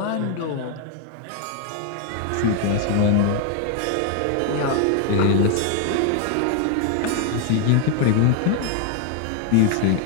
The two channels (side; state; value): both; different; correlation 0.00